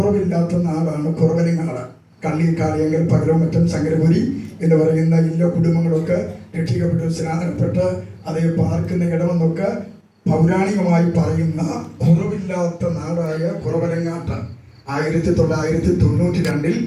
നാടാണ് കുറവലങ്ങാട്, കള്ളിക്കാളിയങ്കൽ, പകരമറ്റം, ശങ്കരപുരി എന്ന് പറയുന്ന എല്ലാ കുടുംബങ്ങളൊക്കെ രക്ഷിക്കപ്പെട്ട് സ്നാനപ്പെട്ട് അതേ പാർക്കുന്ന ഇടമെന്നൊക്കെ പൗരാണികമായി പറയുന്ന കുറവില്ലാത്ത നാടായ കുറവലങ്ങാട്ട് 1992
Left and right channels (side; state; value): both; identical; correlation 1.00